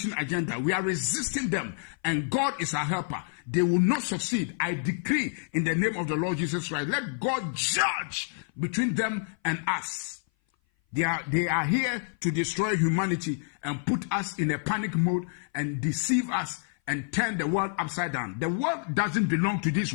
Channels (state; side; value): silent; right; 57 dB below the other